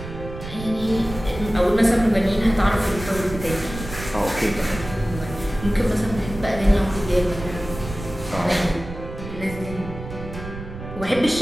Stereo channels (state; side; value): noise; right; rumble, 11 dB below the sound